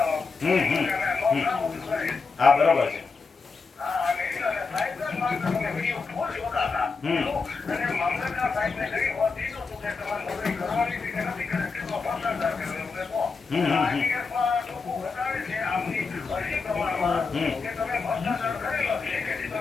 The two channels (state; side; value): quieter; right; 4.6 dB